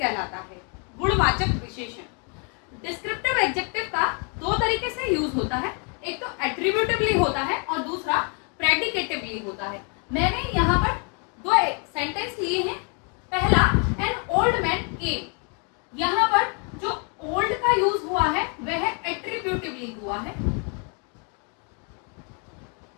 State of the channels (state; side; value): quieter; right; 37.4 dB